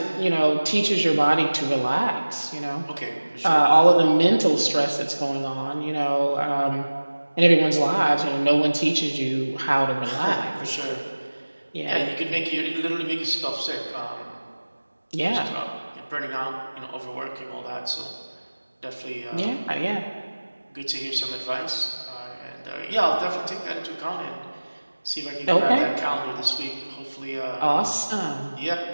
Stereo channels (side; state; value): both; inverted; correlation -1.00